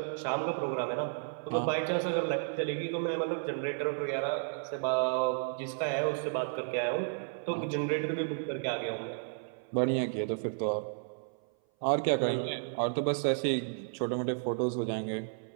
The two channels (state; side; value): silent; left; 56 dB below the other